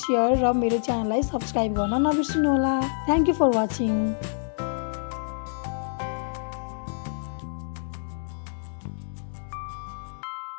र मेरो च्यानललाई सब्सक्राइब गर्न नबिर्सिनुहोला। Thank you for watching.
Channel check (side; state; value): right; silent; digital silence